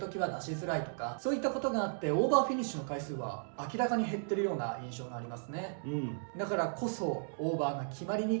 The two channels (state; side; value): silent; left; digital silence